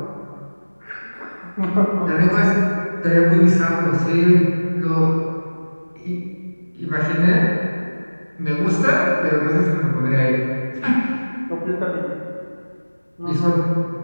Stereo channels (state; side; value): inverted; both; correlation -1.00